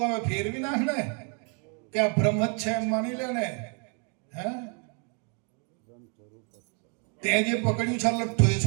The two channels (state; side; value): quieter; left; 37.9 dB